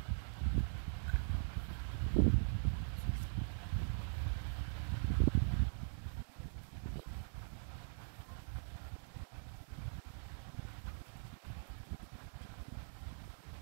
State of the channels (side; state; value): left; silent; digital silence